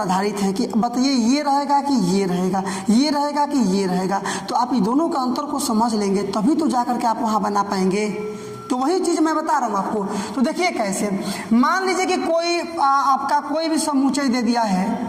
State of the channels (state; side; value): identical; both; correlation 1.00